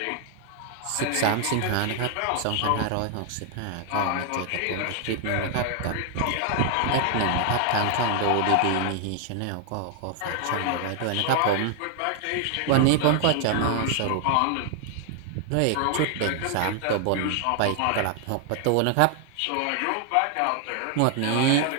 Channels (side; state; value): both; different; correlation 0.00